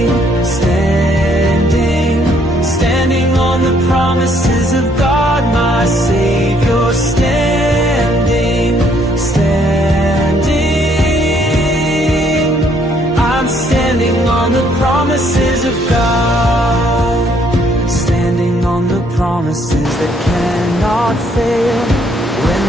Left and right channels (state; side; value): normal; both; correlation 0.67